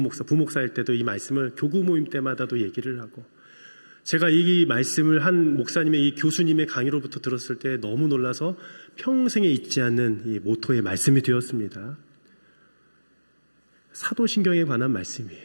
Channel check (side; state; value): both; inverted; correlation -1.00